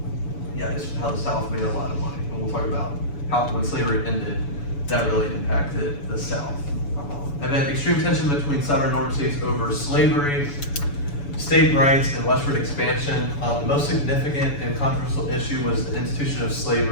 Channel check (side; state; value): right; late; 7.0 ms